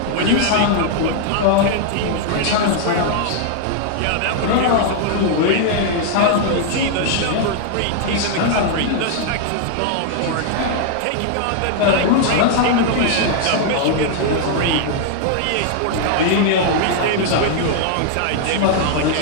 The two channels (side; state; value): both; different; correlation 0.00